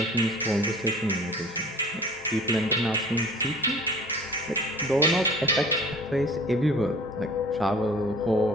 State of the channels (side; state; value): both; normal; correlation 0.46